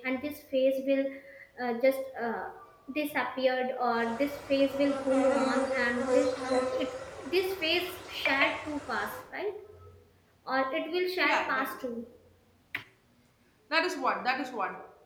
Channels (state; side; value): identical; both; correlation 1.00